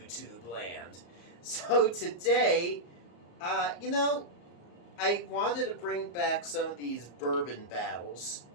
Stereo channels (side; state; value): right; late; 34 ms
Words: land. So today, I wanted to bring back some of these bourbon battles,